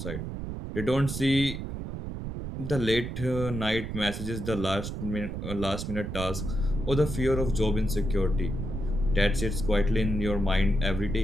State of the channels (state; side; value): noise; right; rumble, 6 dB below the sound